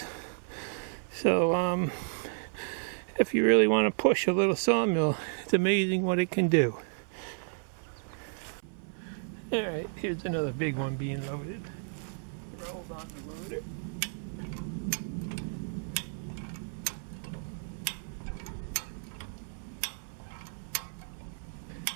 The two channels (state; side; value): silent; left; 56 dB below the other